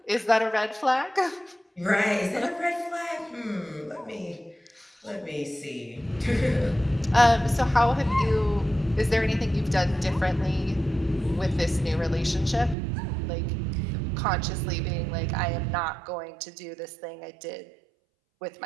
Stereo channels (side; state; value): left; drops out; at 12.8 s